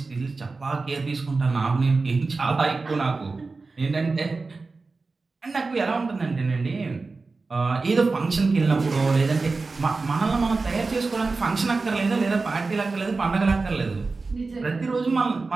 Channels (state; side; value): quieter; left; 3.9 dB